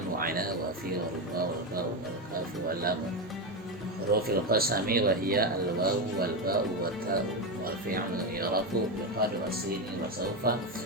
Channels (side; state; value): both; normal; correlation 0.12